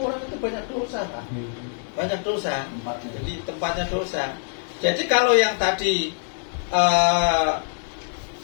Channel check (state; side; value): silent; right; 62 dB below the other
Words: itu banyak dosa, Pak. Banyak dosa. Jadi tempatnya dosa. Jadi kalau yang tadi